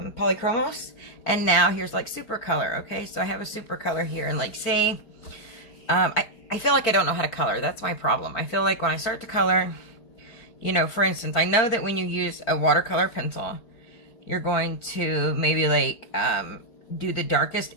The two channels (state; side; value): late; right; 4.5 ms